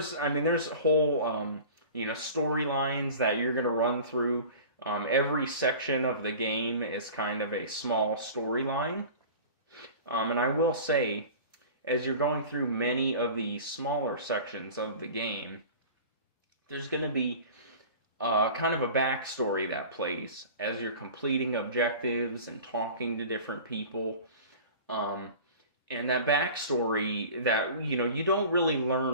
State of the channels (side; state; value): both; inverted; correlation -0.39